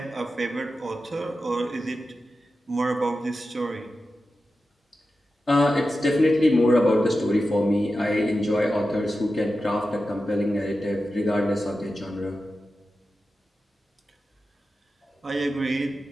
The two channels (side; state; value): both; normal; correlation 0.92